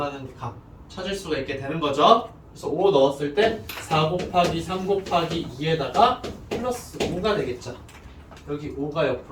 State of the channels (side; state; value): both; identical; correlation 1.00